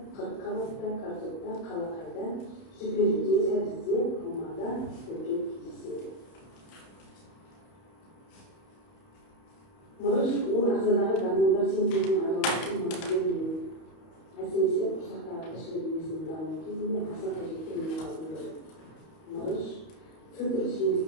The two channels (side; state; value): right; late; 31 ms